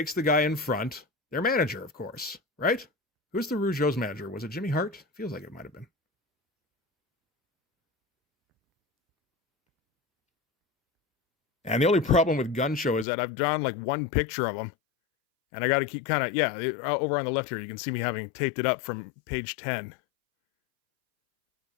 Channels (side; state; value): right; drops out; at 13.1 s